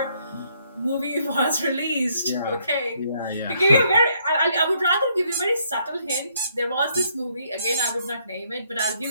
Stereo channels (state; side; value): inverted; both; correlation -0.70